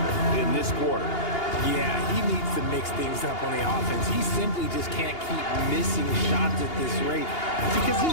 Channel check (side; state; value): right; late; 2.8 ms